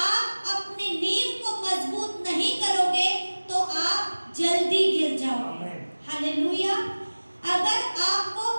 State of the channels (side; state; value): both; inverted; correlation -1.00